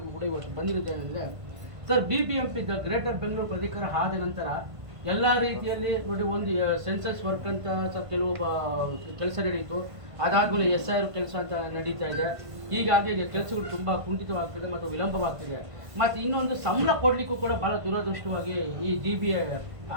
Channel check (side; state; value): left; late; 1.5 ms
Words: ಕೂಡ ಇವತ್ತು ಬಂದಿರುತ್ತೇನೆಂದರೆ ಸರ್, BBMP ಗ್ರೇಟರ್ ಬೆಂಗಳೂರು ಪ್ರಾಧಿಕಾರ ಆದ ನಂತರ ಎಲ್ಲ ರೀತಿಯಲ್ಲಿ ನೋಡಿ, ಒಂದು ಸೆನ್ಸಸ್ ವರ್ಕ್ ಅಂತ ಕೆಲವು ಕೆಲಸ ನಡೆಯಿತು. ಅದಾದಮೇಲೆ SIR ಕೆಲಸ ಅಂತ ನಡೀತಾ ಇದೆ. ಹೀಗಾಗಿ ಕೆಲಸಗಳು ತುಂಬ ಕುಂಠಿತವಾಗ್ತಿದೆ ಮತ್ತು ವಿಳಂಬವಾಗ್ತಿದೆ. ಮತ್ತು ಇನ್ನೊಂದು ಸಂಬಳ ಕೊಡಲಿಕ್ಕೂ ಕೂಡ ಭಾಳ ದುರದೃಷ್ಟವಾಗಿ ಈ GBA